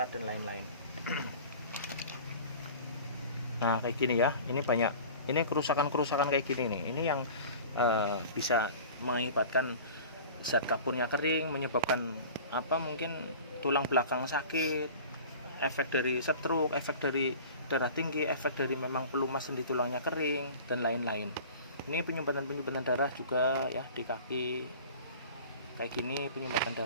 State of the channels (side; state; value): both; inverted; correlation -0.40